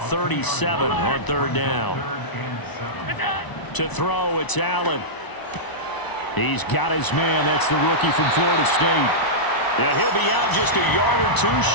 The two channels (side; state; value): right; late; 1.0 ms